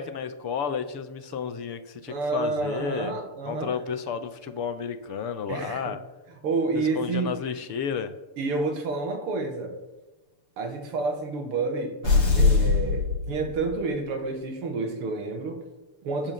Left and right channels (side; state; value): left; late; 6.9 ms